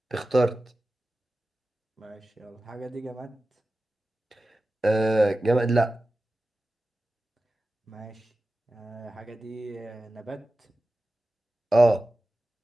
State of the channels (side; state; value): both; normal; correlation 0.95